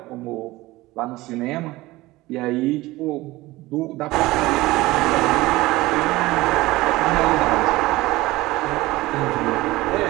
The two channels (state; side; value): quieter; left; 19.2 dB